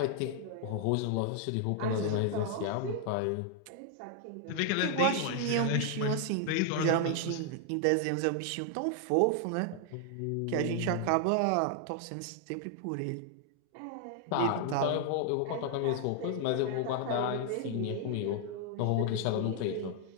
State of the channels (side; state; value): both; different; correlation 0.00